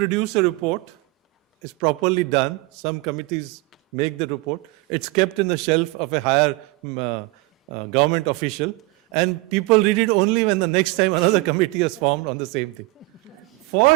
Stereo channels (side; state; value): left; quieter; 22.4 dB